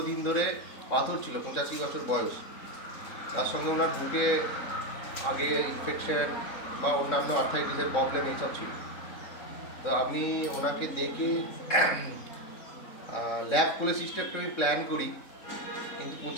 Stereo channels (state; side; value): late; right; 3.7 ms